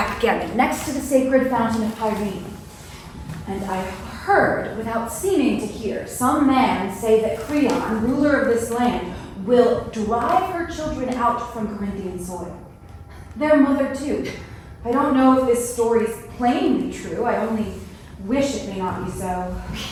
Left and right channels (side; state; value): both; identical; correlation 1.00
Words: next to the sacred fountain of Pyrene. And I heard, without seeming to hear, some man say that Creon, ruler of this land, will drive her children out from Corinthian soil. Their mother, too. I don't know if this story's plainly true. I only wish it may not be so.